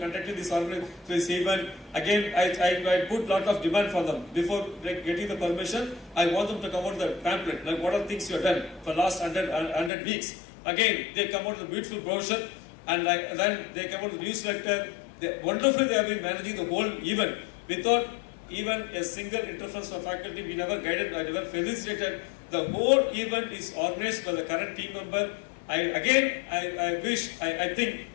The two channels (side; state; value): right; drops out; at 9.9 s